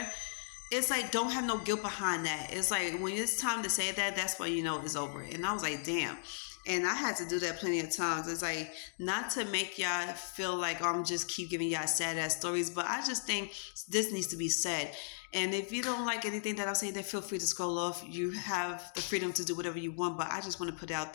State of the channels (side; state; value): right; silent; digital silence